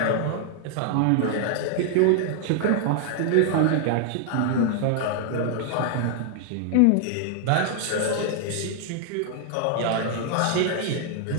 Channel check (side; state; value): both; different; correlation 0.00